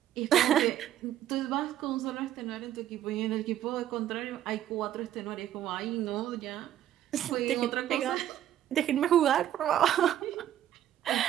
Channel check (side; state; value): left; quieter; 11.6 dB